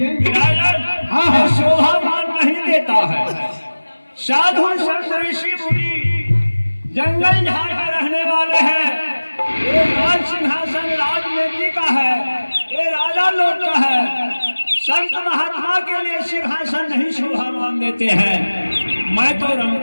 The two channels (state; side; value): inverted; both; correlation -1.00